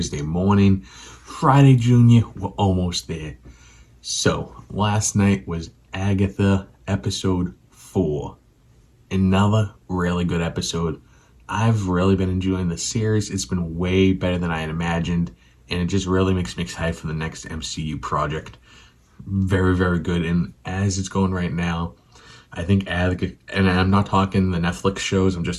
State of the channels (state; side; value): identical; both; correlation 1.00